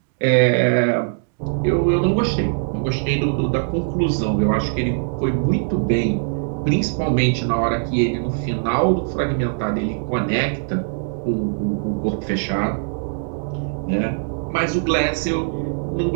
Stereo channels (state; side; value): silent; left; digital silence